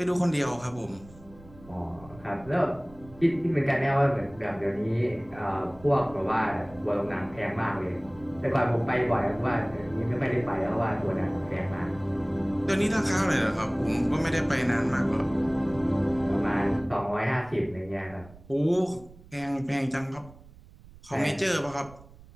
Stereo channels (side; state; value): right; noise; rumble, 21 dB below the sound